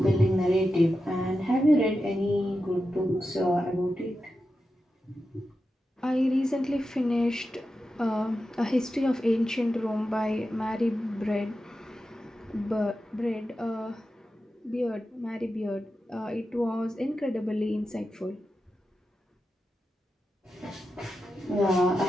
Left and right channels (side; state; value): both; normal; correlation 0.90